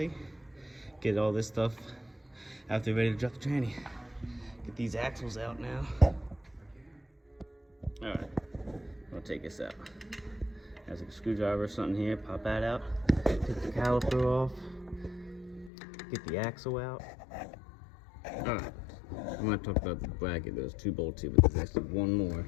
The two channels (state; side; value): drops out; right; at 15.7 s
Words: Get all this stuff after you're ready to drop the tranny. Get these axles out now. Alright, I'll take this out. There's a screwdriver or something here, pop that out. Take the caliper off. Get the axle out. Alright, I'm going to talk about the bracket. There's 2 bolts here, but there's actually 1 more.